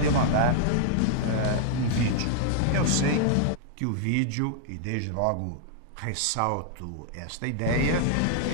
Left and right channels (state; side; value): different; both; correlation -0.01